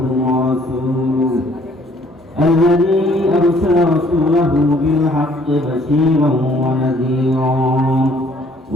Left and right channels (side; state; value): both; normal; correlation 0.61